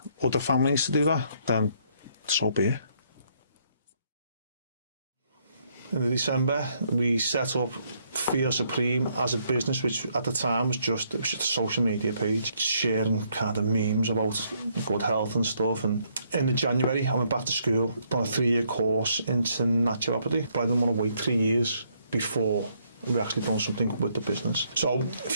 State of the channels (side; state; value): both; inverted; correlation -0.71